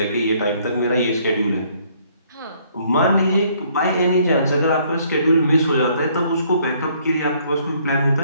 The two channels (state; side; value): inverted; both; correlation -0.64